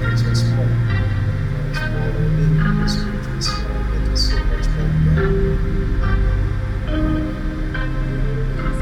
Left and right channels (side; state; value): both; identical; correlation 1.00